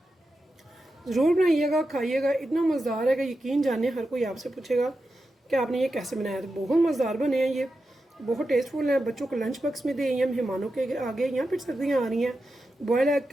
ज़रूर बनाइएगा, खाइएगा, इतना मज़ेदार है कि यकीन जाने हर कोई आपसे पूछेगा कि आपने ये कैसे बनाया। तो बहुत मज़ेदार बने हैं ये, बहुत टेस्टफुल हैं। बच्चों को लंच बॉक्स में दें या मेहमानों के आगे, या फिर सर्दियाँ आ रही हैं, बॉयल एग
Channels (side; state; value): both; normal; correlation 0.90